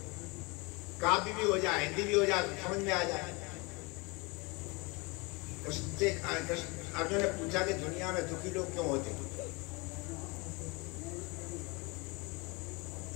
काव्य भी हो जाए, हिंदी भी हो जाए, समझ में आ जाए। अर्जुन ने पूछा कि दुनिया में दुखी लोग क्यों होते?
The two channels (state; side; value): quieter; right; 27.5 dB